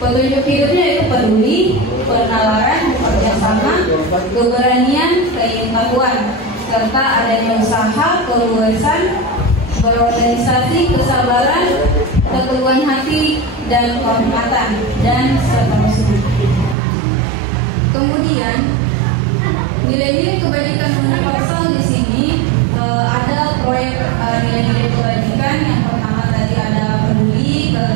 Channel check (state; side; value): drops out; left; at 16.8 s